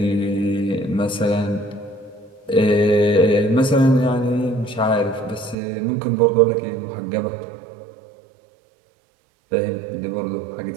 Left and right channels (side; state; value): left; drops out; at 5.6 s